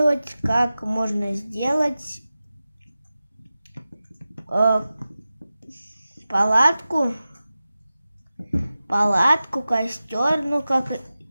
как можно сделать палатку, костер, ну как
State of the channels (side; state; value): both; inverted; correlation -0.95